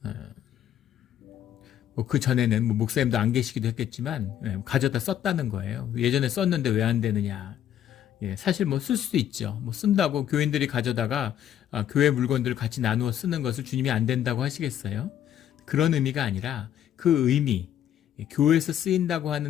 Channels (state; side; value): quieter; right; 10.6 dB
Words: 그 전에는 목사님도 안 계시기도 했겠지만 가져다 썼다는 거예요. 예전에 썼는데 왜 안 되느냐. 사실 쓸 수도 있죠. 쓴다고 교인들이 가져다가 교회 물건들을 같이 나누어 쓰는 것을 주님이 안 된다고 하시겠어요? 그런 의미가 아니라 그 의미, 교회에서 쓰인다고